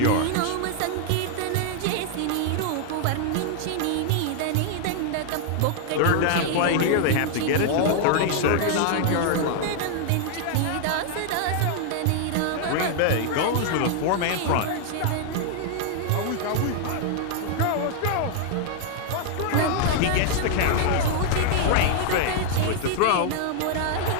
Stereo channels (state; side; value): different; both; correlation 0.00